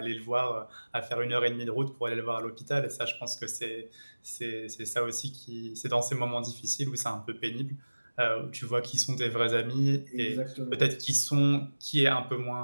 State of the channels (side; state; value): both; inverted; correlation -1.00